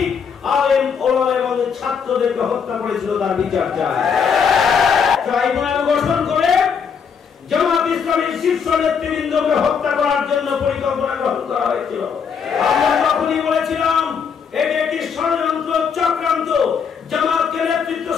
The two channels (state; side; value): quieter; right; 6.6 dB